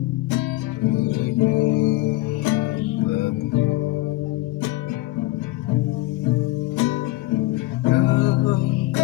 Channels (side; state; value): right; quieter; 18.6 dB